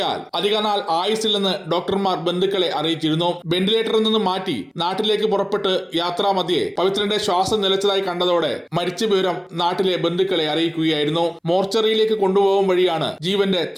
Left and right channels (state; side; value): identical; both; correlation 1.00